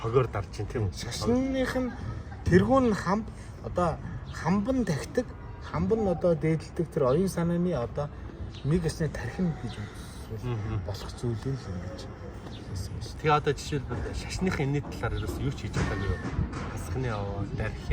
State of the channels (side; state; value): both; identical; correlation 1.00